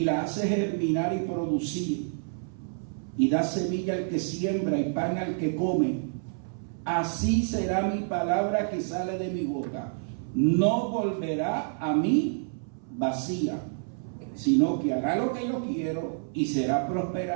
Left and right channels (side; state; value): left; silent; 59 dB below the other